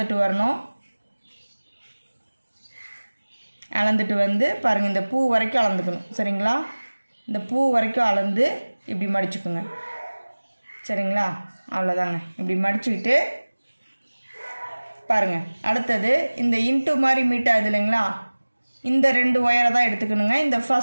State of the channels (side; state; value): both; inverted; correlation -1.00